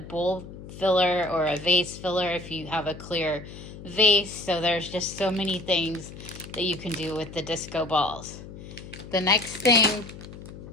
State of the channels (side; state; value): left; noise; hum, 14 dB below the sound